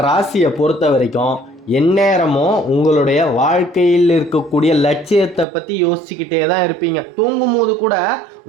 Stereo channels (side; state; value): left; drops out; at 5.5 s